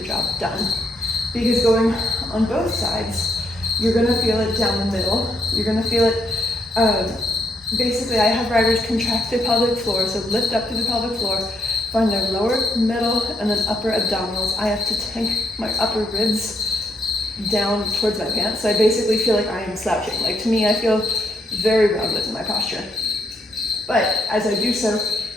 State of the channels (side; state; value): both; normal; correlation 0.75